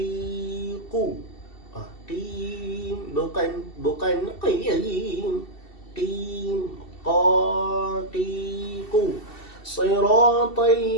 Qim, bukan qiyim. Qim, qaqiqu. Siratal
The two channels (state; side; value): late; right; 2.7 ms